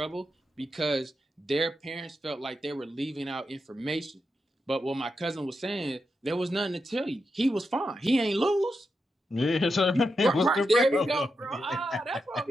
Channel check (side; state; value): both; normal; correlation 0.86